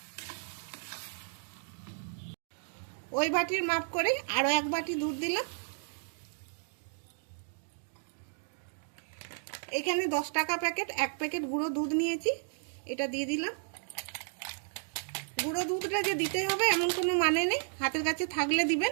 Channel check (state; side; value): silent; left; digital silence